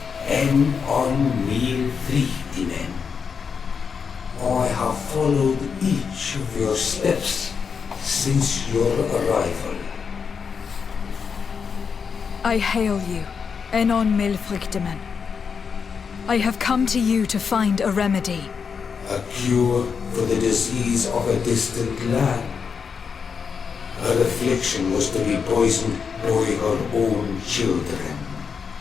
einem. I have followed each of your steps since your arrival. I hail you, Enon Milfrichteman. I have come to you to find a remedy. a cure for the disease of a distant land. Her affliction was to be poisoned by her own children.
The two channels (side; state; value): right; quieter; 6.1 dB